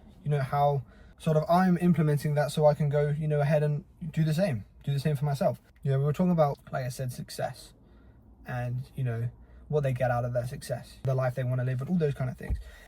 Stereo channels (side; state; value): both; identical; correlation 1.00